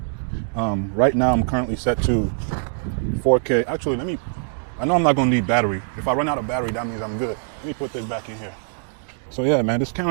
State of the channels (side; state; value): left; silent; digital silence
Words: Right now I'm currently set to 4K. Actually, I know I'm not gonna need battery. If I run out of battery, that means I'm good. Let me put this back in here. So yeah, man, this